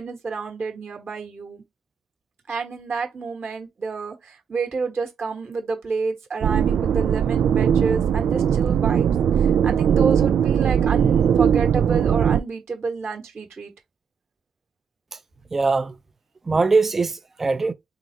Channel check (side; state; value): left; quieter; 6.6 dB